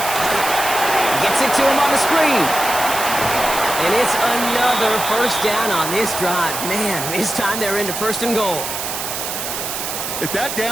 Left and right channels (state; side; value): noise; right; hiss, 5 dB below the sound